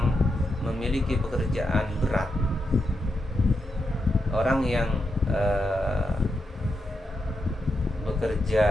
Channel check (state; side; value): normal; both; correlation 0.85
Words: memiliki pekerjaan berat, orang yang